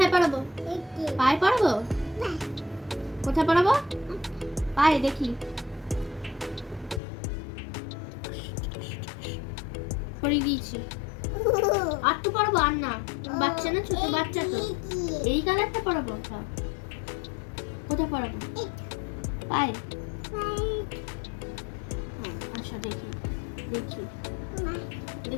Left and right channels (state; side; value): drops out; right; at 7.0 s